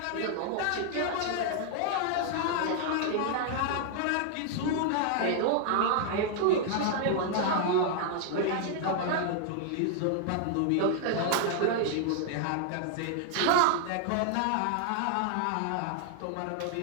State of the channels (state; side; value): different; both; correlation 0.00